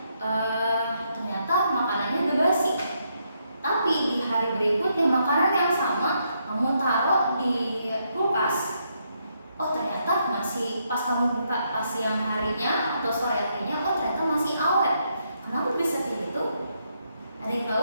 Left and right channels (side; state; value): both; inverted; correlation -0.77